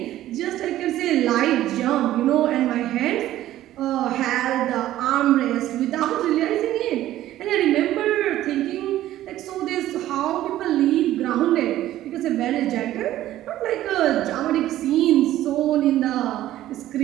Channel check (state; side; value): quieter; left; 13.9 dB